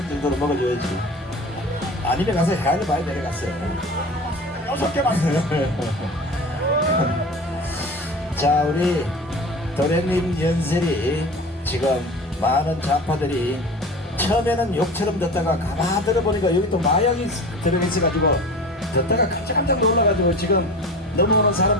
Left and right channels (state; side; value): normal; both; correlation 0.36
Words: 정도로 먹어줘야지. 아니면 가서 헤아려 봐야 내려갔어요. 6개 맞습니다. 자 우리 도련님 연설이 지금 많은 좌파들이 처음에는 욕처럼 듣다가 가만 들어보니까 여기 또 마약이 들어있어가지고 듣다가 깜짝깜짝 놀라가지고 지금 넘어오는